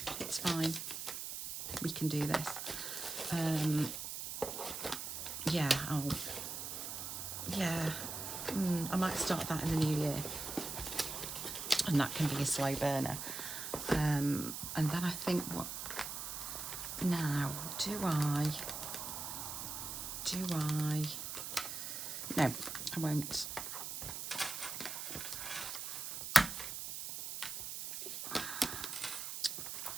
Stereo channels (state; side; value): noise; right; hiss, 5 dB below the sound